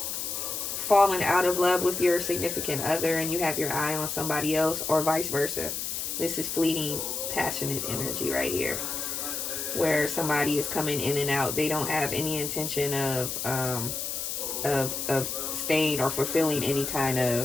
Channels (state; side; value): noise; left; hiss, 3 dB below the sound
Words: fallen out of love with your significant other and you have your eye on somebody else, or vice versa. This is fleeting, passionate energy right here, where somebody is coming in and out. They don't have any intention of staying or fulfilling any kind